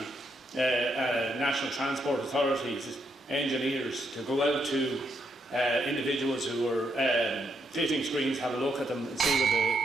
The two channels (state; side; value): normal; both; correlation 0.77